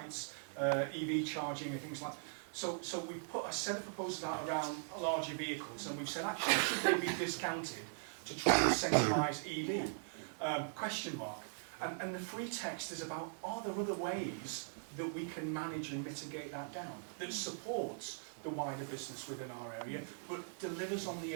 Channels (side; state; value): left; silent; 51 dB below the other